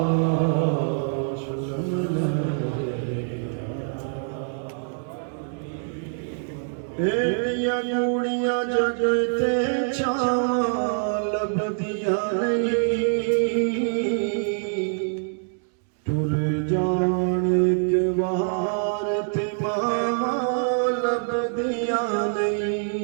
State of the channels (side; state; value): left; silent; digital silence